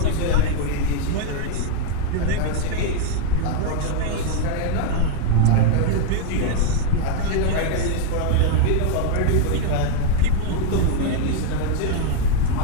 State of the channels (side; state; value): both; different; correlation 0.01